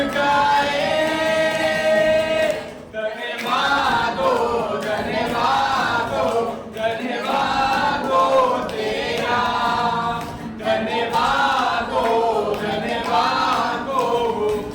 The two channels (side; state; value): both; identical; correlation 1.00